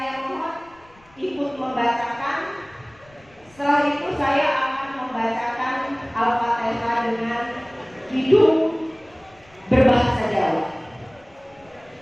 mohon ikut membacakan. Setelah itu saya akan membacakan Al-Fatihah dengan hidung berbahasa Jawa.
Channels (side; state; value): left; noise; rumble, 29 dB below the sound